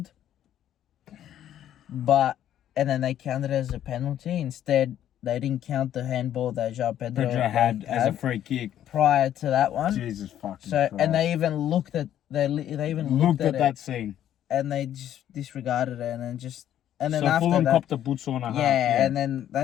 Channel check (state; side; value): quieter; right; 11.1 dB